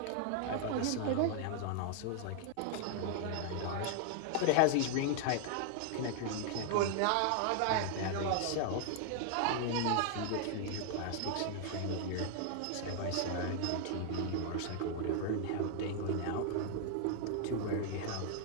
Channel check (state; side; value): different; both; correlation 0.00